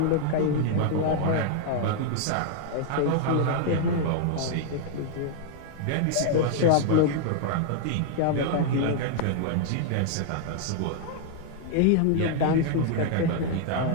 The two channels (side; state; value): both; different; correlation 0.00